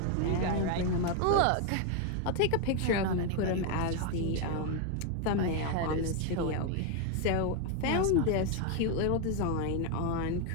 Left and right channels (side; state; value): both; different; correlation 0.01